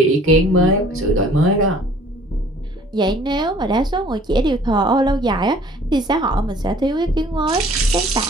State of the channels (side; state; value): both; normal; correlation 0.53